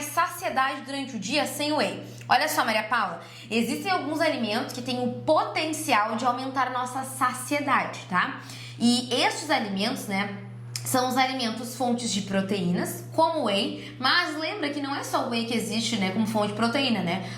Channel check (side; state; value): both; identical; correlation 1.00